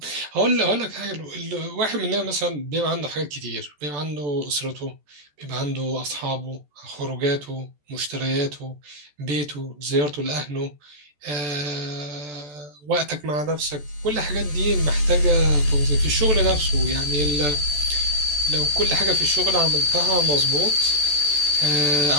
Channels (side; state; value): left; late; 14 ms